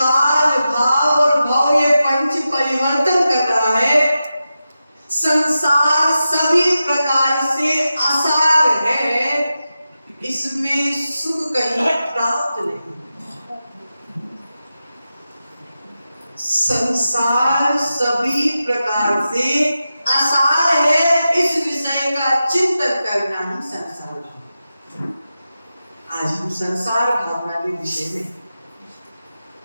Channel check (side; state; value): both; inverted; correlation -0.92